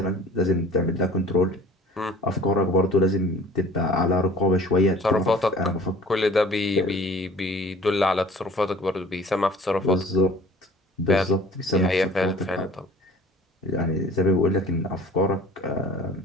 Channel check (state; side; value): normal; both; correlation 0.48